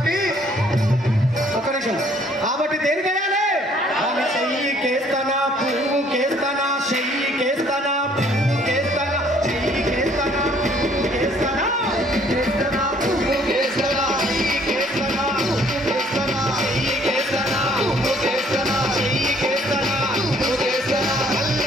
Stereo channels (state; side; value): normal; both; correlation 0.61